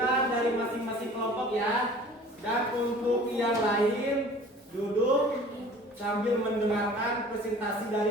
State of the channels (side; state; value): both; normal; correlation 0.46